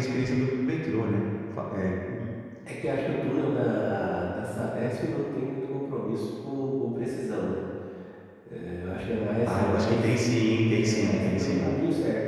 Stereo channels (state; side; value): identical; both; correlation 1.00